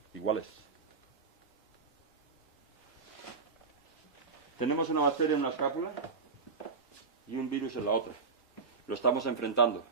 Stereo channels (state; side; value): quieter; left; 4.8 dB